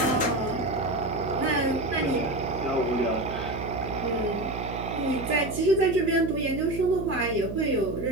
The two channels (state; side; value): noise; right; hum, 8 dB below the sound